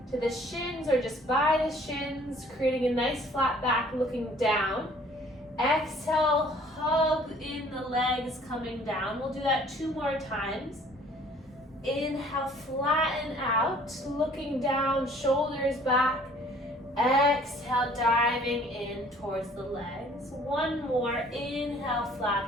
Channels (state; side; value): normal; both; correlation 0.56